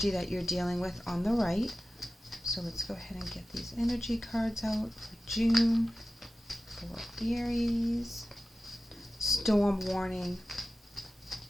that you're dealing with on the right. So let's go ahead and get these energy cards out for June for Aries. Storm warning.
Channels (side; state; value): both; normal; correlation 0.95